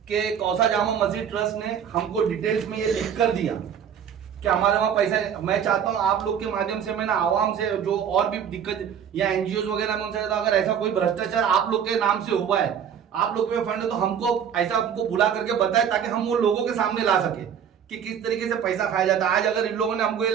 कि कौसा जामा मस्जिद ट्रस्ट ने हमको डिटेल्स में ये लिख कर दिया कि हमारे वहां पैसा। मैं चाहता हूं आप लोग के माध्यम से, मैं ना आवाम से जो और भी दिक्कत या एनजीओ वगैरह में उनसे, अगर ऐसा कोई भ्रष्टाचार आप लोग के नाम से हुआ है, आप लोग के फंड है, तो हमको ऐसा हमको बुला करके बताए ताकि हम वो लोगों के सामने ला सके कि किस तरीके से पैसा खाया जाता है। आज अगर इन लोगों ने हमको ये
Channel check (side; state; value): left; quieter; 8.3 dB